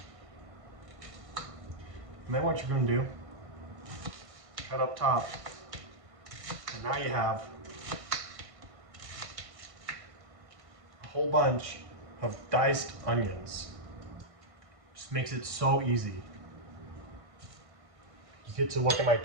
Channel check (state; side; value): late; left; 1.5 ms